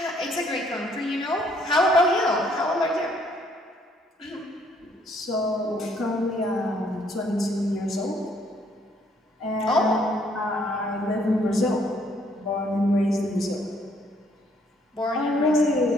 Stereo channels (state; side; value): normal; both; correlation 0.66